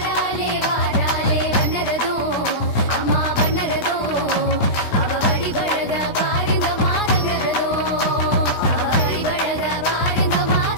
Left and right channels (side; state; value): right; late; 16 ms